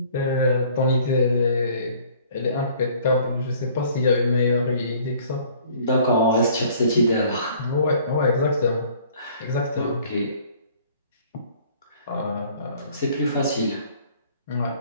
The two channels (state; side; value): inverted; both; correlation -0.55